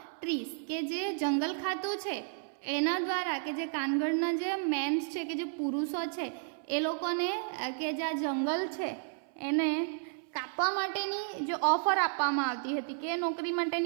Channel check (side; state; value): left; silent; 56 dB below the other